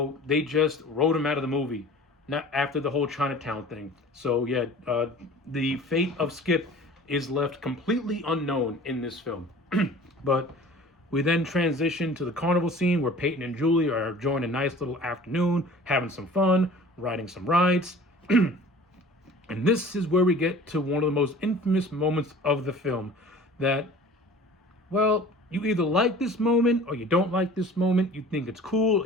they just wrote him out of the movie. Not after the whole Chinatown thing. So yeah, the fate of Skip is left completely unknown in this film. But we then transition to the carnival scene where Peyton and Julie are enjoying a nice little afternoon, having some fun, riding some rides. And this is where we get to one of the most infamous moments of the film. That, well, you either like this moment or you don't like this moment. You think it's cool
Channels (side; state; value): both; normal; correlation 0.44